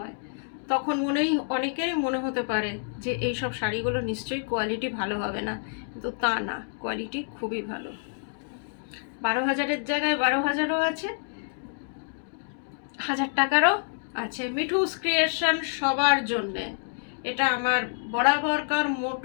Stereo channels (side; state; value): right; silent; digital silence